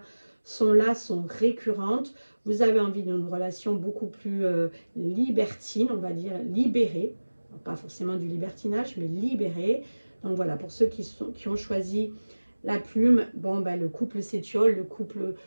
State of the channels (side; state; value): both; inverted; correlation -1.00